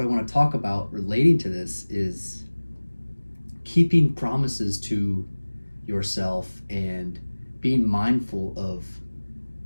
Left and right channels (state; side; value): inverted; both; correlation -1.00